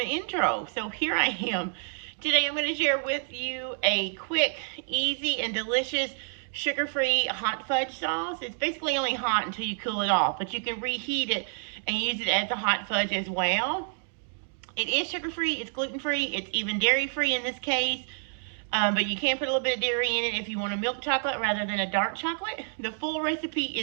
intro. So here I am. Today I'm going to share with you a quick, easy, and delicious sugar-free hot fudge sauce. It's basically only hot until you cool it off, but you can reheat it and use it as a hot fudge as well. It is sugar-free, it's gluten-free, it's even dairy-free in this case. But you can put a little bit of dairy in it if you want a milk chocolate rather than a dark chocolate. The full recipe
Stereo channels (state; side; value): silent; left; digital silence